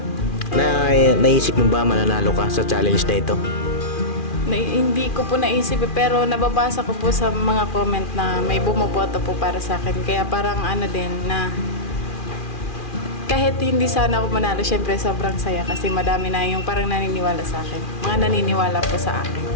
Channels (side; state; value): right; late; 2.4 ms